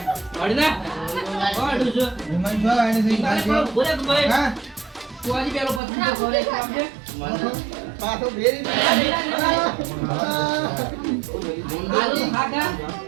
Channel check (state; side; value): drops out; left; at 5.8 s